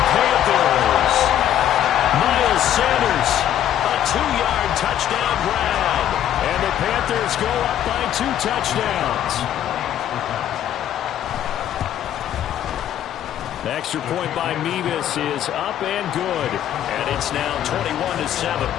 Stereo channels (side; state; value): right; quieter; 11.0 dB